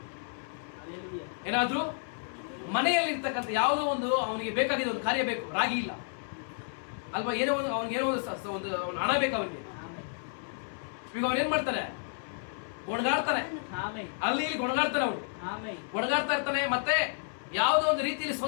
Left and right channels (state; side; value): silent; right; 57 dB below the other